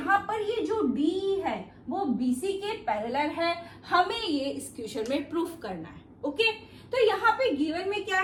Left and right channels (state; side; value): identical; both; correlation 1.00